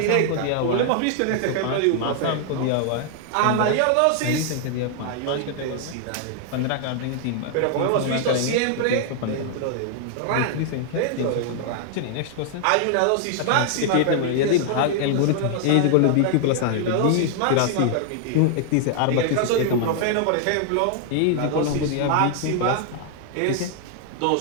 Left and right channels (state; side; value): different; both; correlation 0.00